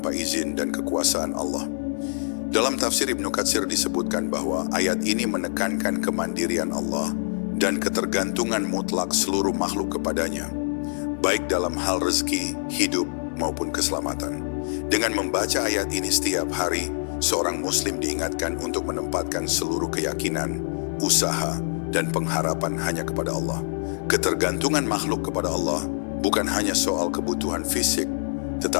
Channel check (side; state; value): right; silent; digital silence